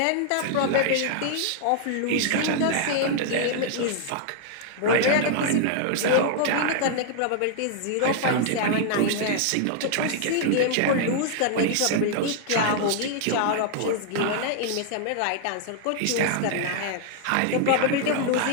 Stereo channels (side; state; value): both; different; correlation 0.00